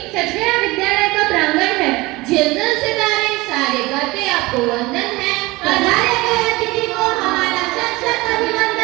सच गया विद्यालय का प्रांगण है। झिलमिल सितारे सारे करते आपको वंदन है। पधारे गए अतिथि को हमारा सत सत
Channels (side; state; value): left; quieter; 21.6 dB